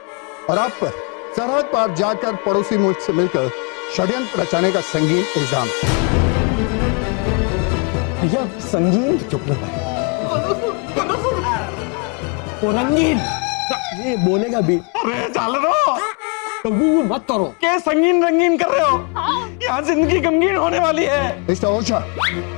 और आप पर सरहद पार जाकर पड़ोसी मुल्क से मिलकर षड्यंत्र रचाने का संगीन इल्जाम। भैया संगीन, चुप ना भाई। वो रंगीन, ये बोलेगा भी। अरे झालरो, कभी मत करो। क्या संगीन रंगीन कर रहे हो? यहाँ जिंदगी गमगीन होने वाली है। मिस्टर ओझा,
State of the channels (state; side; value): quieter; right; 34.9 dB